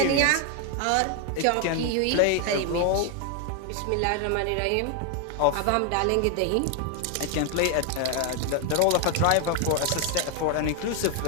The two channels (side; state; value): both; different; correlation 0.01